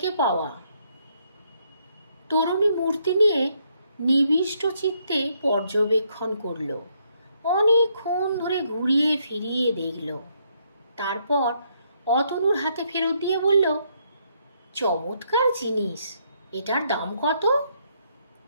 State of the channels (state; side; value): inverted; both; correlation -0.73